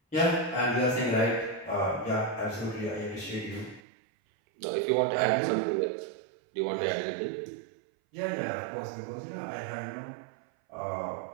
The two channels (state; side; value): drops out; left; at 3.8 s